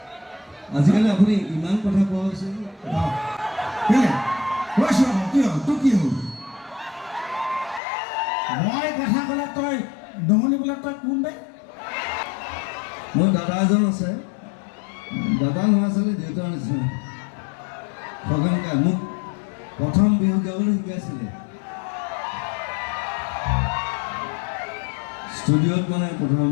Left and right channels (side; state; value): right; drops out; at 7.8 s